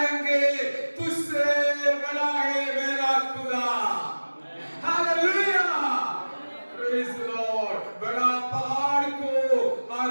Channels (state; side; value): inverted; both; correlation -1.00